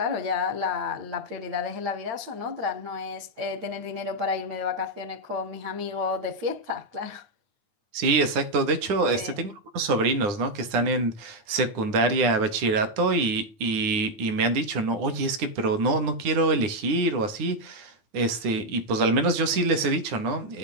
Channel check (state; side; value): late; left; 9.8 ms